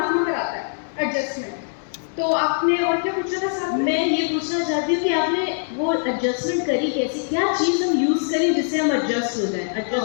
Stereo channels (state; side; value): silent; right; 64 dB below the other